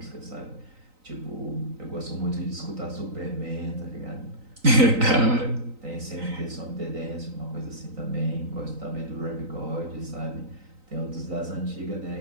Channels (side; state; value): left; late; 3.9 ms